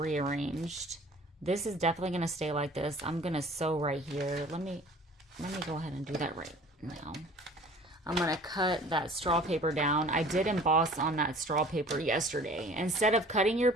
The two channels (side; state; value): both; normal; correlation 0.48